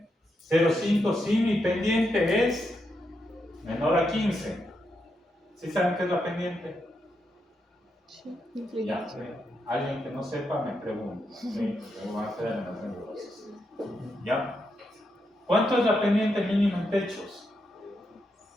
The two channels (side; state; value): both; normal; correlation 0.83